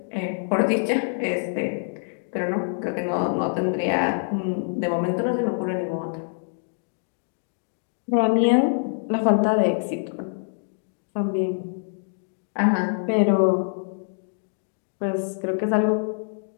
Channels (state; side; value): silent; right; digital silence